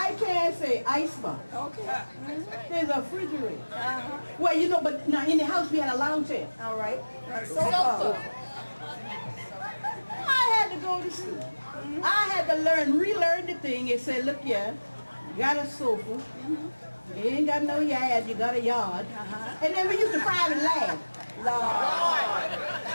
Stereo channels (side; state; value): both; inverted; correlation -1.00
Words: can't say icebox. Okay. There's a refrigerator. Well, you know, but now in the house we had a lounge chair. All right. Sofa. I had to go to school. I had to relearn the thing and say, look here, you got a sofa. You ain't got no yard, you got a yard. And then we used to private laugh.